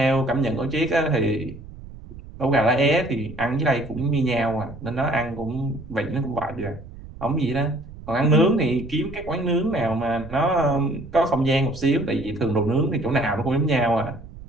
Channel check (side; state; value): right; noise; rumble, 16 dB below the sound